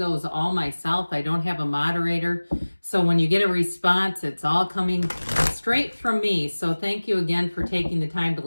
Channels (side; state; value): both; inverted; correlation -1.00